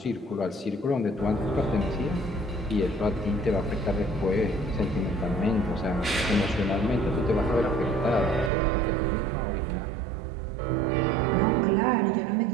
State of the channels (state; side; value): drops out; left; at 8.5 s